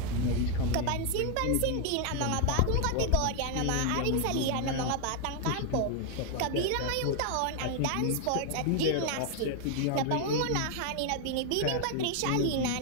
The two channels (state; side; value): different; both; correlation 0.00